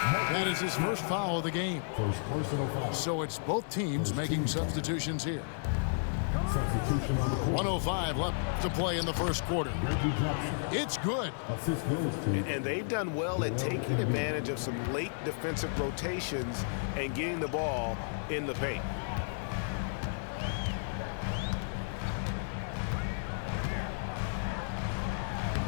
is his first foul of the game. First personal foul. So it's both teams making substitutions here. 1:05 left to play in the first quarter. It's good. And they've done well at taking advantage of some late defensive rotations and getting the ball in the paint.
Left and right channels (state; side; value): silent; right; digital silence